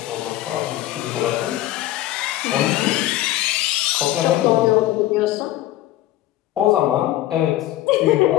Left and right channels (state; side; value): quieter; right; 14.9 dB